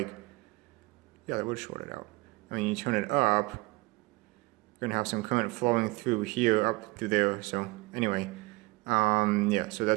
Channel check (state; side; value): quieter; left; 23.4 dB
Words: yeah, that would short it out. And when you turn it up, you're going to have some current flowing through here, up through there, so anyway. Yeah, so